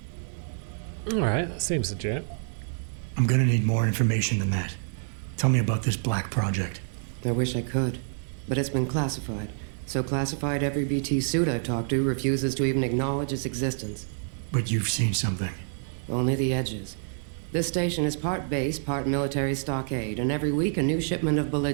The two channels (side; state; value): left; silent; 60 dB below the other